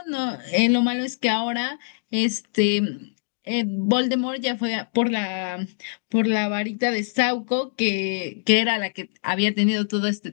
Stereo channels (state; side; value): silent; right; digital silence